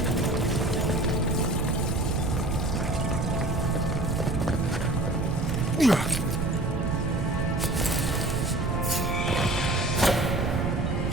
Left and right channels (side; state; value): right; noise; rumble, 2 dB below the sound